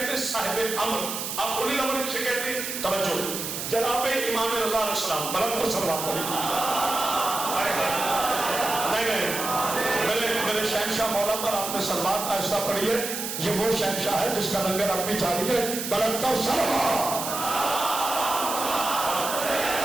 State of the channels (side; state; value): right; noise; hiss, 5 dB below the sound